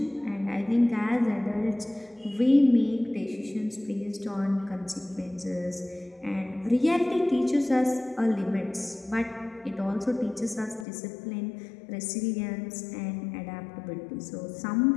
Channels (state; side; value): drops out; right; at 10.9 s